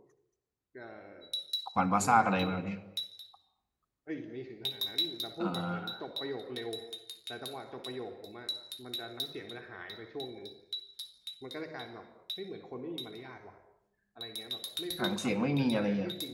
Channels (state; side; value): identical; both; correlation 1.00